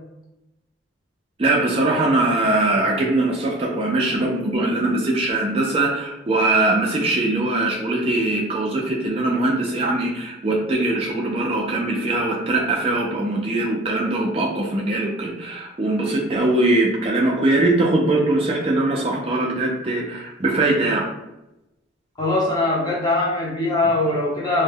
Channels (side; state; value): both; normal; correlation 0.40